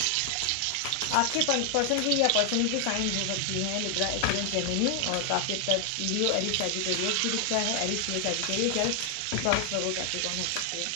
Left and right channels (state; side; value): different; both; correlation 0.00